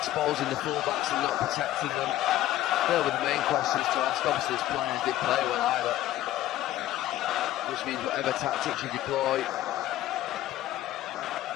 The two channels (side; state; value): right; quieter; 14.2 dB